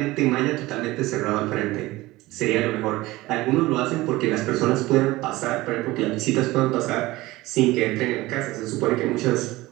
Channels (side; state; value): left; quieter; 19.2 dB